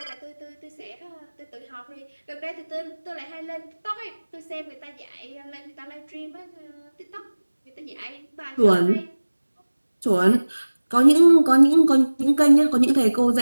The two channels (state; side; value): inverted; both; correlation -1.00